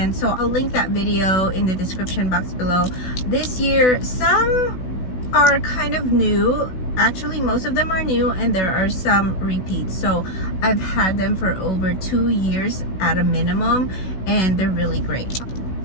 so I'll link that video in the description box below. This year, some are kind of new. Actually, most of them are new, and there are some repeats. So I've had them for over 2 years at a minimum, and they're really great.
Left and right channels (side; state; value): right; late; 16 ms